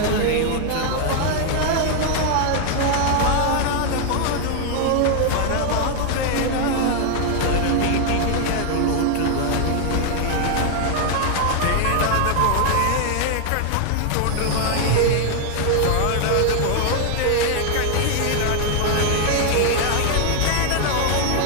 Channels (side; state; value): both; different; correlation 0.00